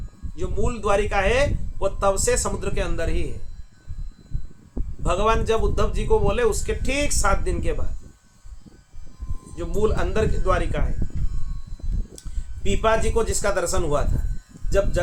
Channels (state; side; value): identical; both; correlation 1.00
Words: जो मूल द्वारिका है वो तब से समुद्र के अंदर ही है। भगवान जब उद्धव जी को बोले उसके ठीक 7 दिन के बाद जो मूल अंदर की द्वारिका है। पीपा जी को जिसका दर्शन हुआ था, जब